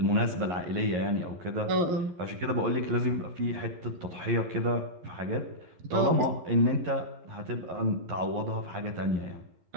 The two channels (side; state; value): left; late; 11 ms